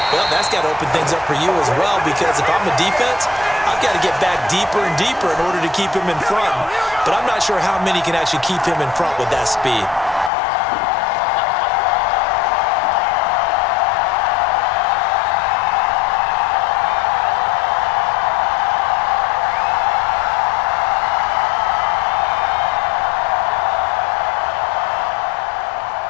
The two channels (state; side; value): drops out; right; at 10.3 s